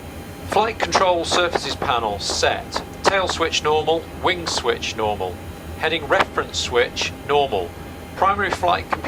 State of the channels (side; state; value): both; identical; correlation 1.00